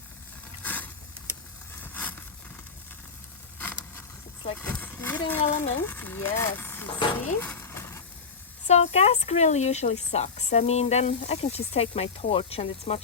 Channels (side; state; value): right; quieter; 5.2 dB